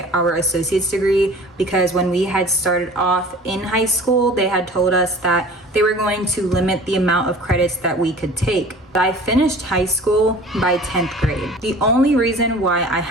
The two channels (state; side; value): normal; both; correlation 0.44